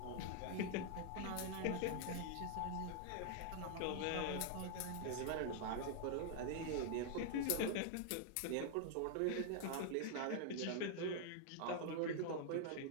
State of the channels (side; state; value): both; different; correlation -0.01